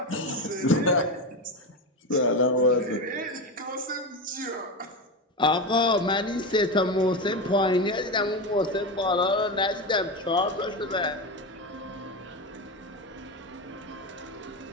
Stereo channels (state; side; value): normal; both; correlation 0.18